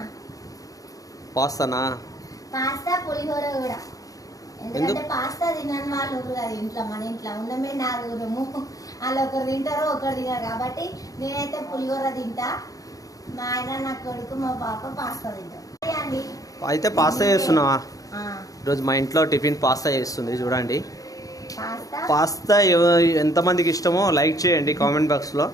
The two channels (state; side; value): late; right; 0.17 ms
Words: పాస్తానా? పాస్తా పులిహోర కూడా. ఎందుకంటే పాస్తా తినని వాళ్ళు కదా ఇంట్లో, మన ఇంట్లో ఉన్నమే నాలుగురము. వాళ్ళు ఒకరు తింటారో ఒకరు తినరు కాబట్టి నేనైతే పులిహోర తింటా, మా ఆయన నా కొడుకు మా పాప పాస్తా తింటాం అండి. అయితే పాస్తా చేస్తున్నావా? ఈరోజు మా ఇంట్లో టిఫిన్ పాస్తా చేస్తుంది చూడండి. పాస్తా ఎంతమందికి ఇష్టమో లైక్ చేయండి కామెంట్ బాక్స్లో.